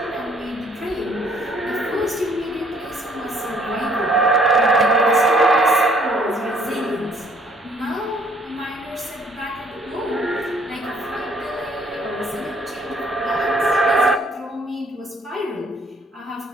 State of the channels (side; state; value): both; normal; correlation 0.62